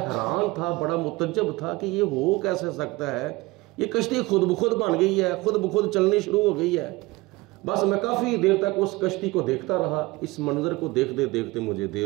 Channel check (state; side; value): quieter; left; 21.9 dB